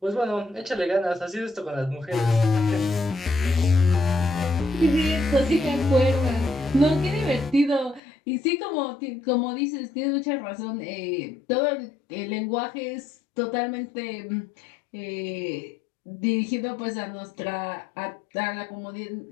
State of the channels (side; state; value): right; drops out; at 8.0 s